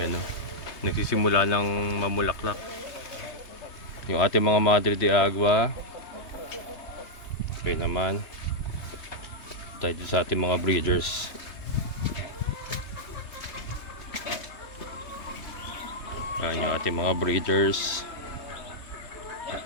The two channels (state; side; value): late; right; 3.3 ms